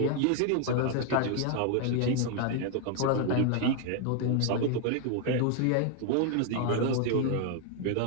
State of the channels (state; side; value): different; both; correlation 0.01